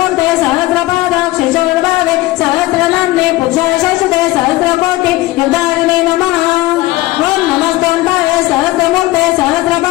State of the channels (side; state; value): right; quieter; 18.5 dB